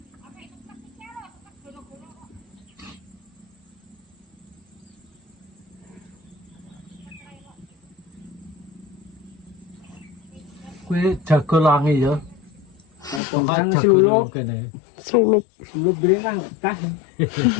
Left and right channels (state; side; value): drops out; right; at 13.2 s